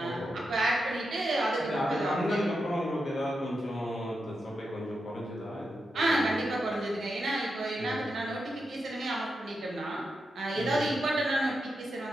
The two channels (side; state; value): both; normal; correlation 0.87